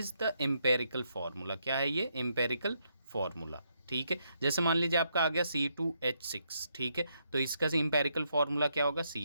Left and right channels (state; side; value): inverted; both; correlation -0.78